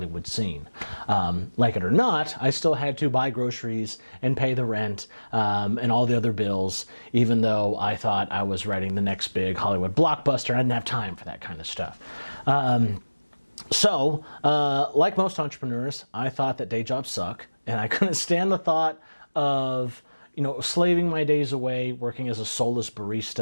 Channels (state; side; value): inverted; both; correlation -1.00